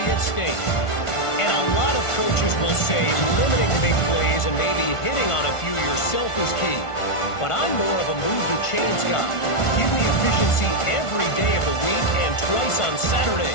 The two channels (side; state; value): right; late; 1.5 ms